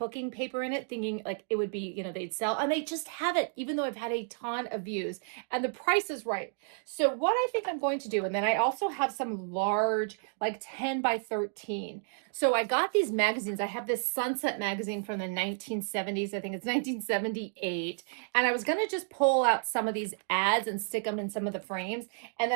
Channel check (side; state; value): left; silent; digital silence